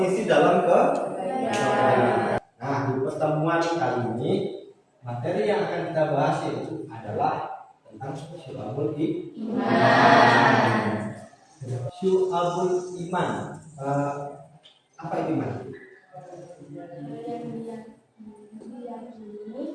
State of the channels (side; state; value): both; identical; correlation 1.00